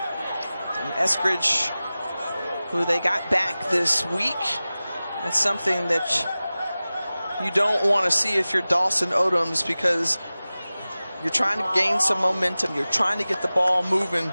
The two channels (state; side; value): inverted; both; correlation -0.97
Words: And Eskridge, who they got back this week. That's something that you don't want to see if you're Dawson Odoms, because you're trying to gain some momentum. You're trying to get the ball moving